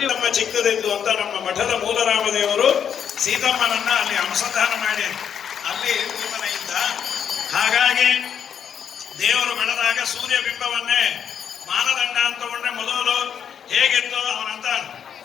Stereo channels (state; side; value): quieter; right; 8.2 dB